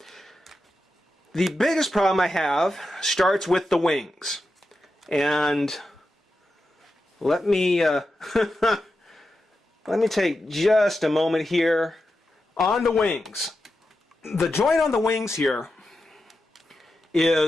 The biggest problem I have starts with the wings. And let me let me take just a moment here on the wings. The joint on the wings here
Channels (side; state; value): both; normal; correlation 0.89